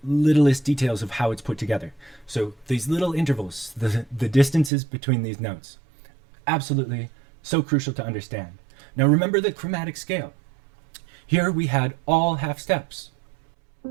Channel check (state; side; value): drops out; left; at 4.7 s